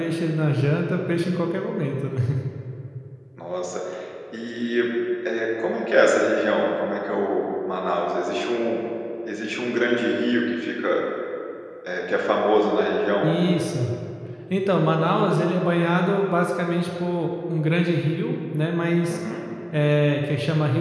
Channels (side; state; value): both; identical; correlation 1.00